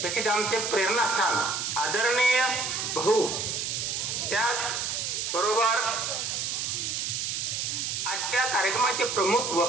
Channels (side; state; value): right; noise; hiss, 2 dB below the sound